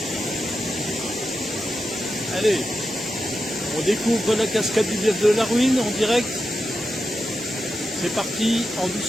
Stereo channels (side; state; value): both; normal; correlation 0.88